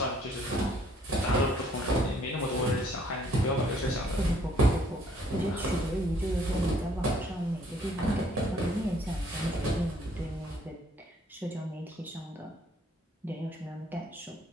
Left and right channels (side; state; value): both; normal; correlation 0.63